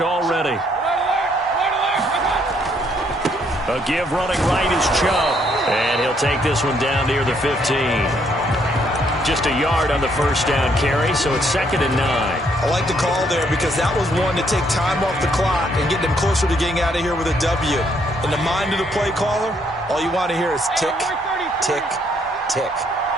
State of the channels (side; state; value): both; normal; correlation 0.70